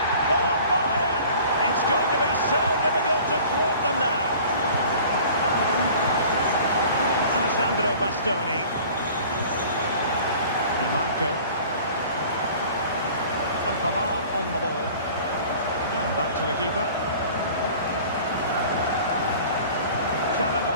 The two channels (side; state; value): both; inverted; correlation -0.46